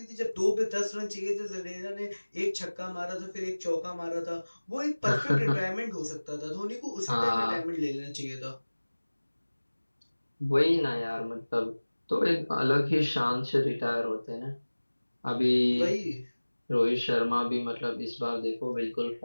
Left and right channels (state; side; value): inverted; both; correlation -1.00